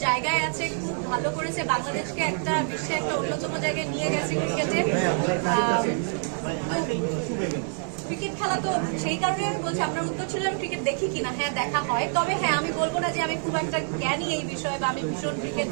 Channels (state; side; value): silent; left; 58 dB below the other